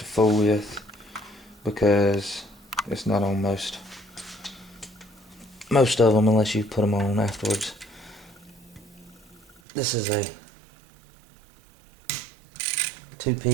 fool with, because it's not on most of them unless you put them on afterwards. This is a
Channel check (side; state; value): left; drops out; at 9.6 s